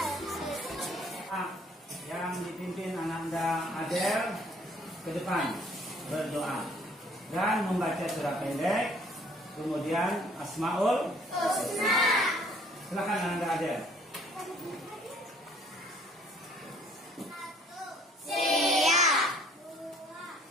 Yang dipimpin Ananda Adel ke depan berdoa dan membaca surah pendek, kemudian Asmaul Husna. Silakan Ananda Adel. Siap.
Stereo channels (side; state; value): both; normal; correlation 0.59